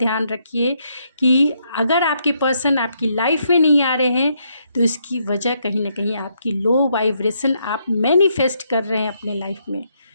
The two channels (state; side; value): inverted; both; correlation -0.75